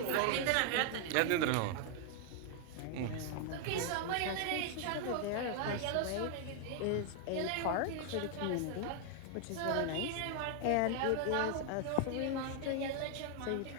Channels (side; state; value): both; different; correlation 0.00